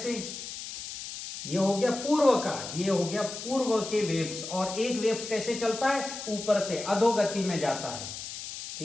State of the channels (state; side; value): noise; left; hiss, 9 dB below the sound